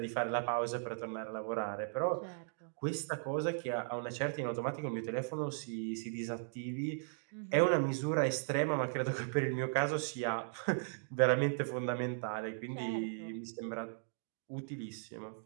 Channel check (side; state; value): left; silent; digital silence